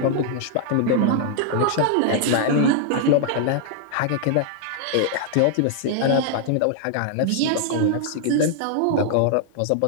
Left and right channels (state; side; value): different; both; correlation 0.00